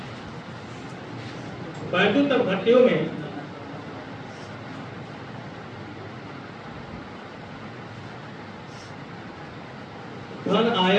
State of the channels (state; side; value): identical; both; correlation 1.00